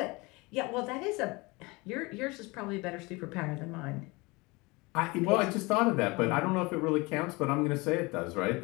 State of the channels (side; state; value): right; quieter; 24.9 dB